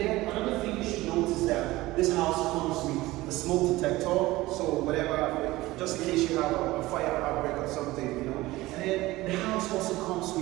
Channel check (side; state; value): left; quieter; 18.7 dB